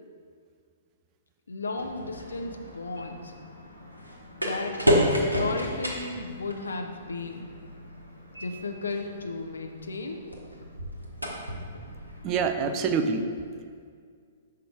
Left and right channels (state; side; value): inverted; both; correlation -0.44